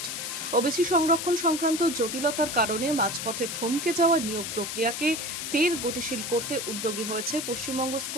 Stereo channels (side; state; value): left; noise; hiss, 5 dB below the sound